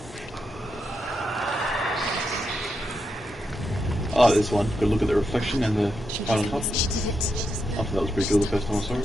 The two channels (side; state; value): both; normal; correlation 0.84